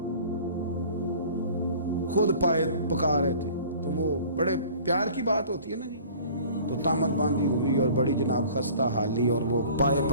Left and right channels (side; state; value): both; inverted; correlation -0.47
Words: خود پائے پکا رہے تھے، تو وہ بڑے پیار کی بات ہوتی ہے نا جی، تو تامت باندھی ہوئی اور بڑی جناب خستہ حالی، اور وہ پائے